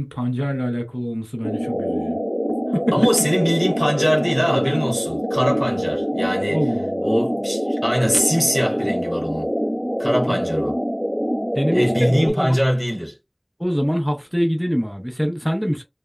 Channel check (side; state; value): both; identical; correlation 1.00